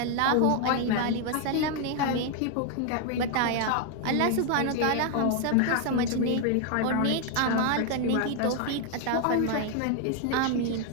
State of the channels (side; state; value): both; different; correlation 0.00